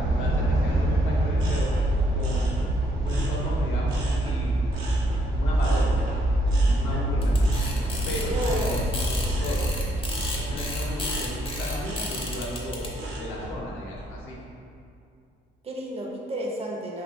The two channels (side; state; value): both; normal; correlation 0.72